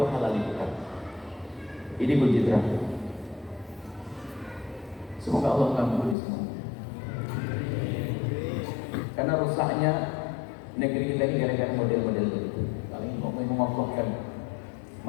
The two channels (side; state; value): right; drops out; at 6.2 s